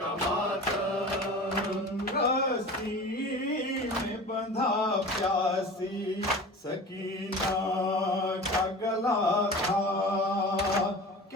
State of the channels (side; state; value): both; normal; correlation 0.36